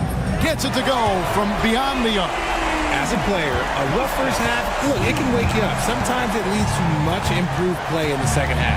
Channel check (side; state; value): both; identical; correlation 1.00